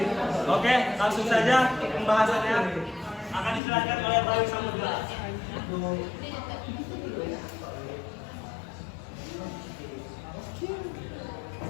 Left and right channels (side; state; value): right; drops out; at 3.6 s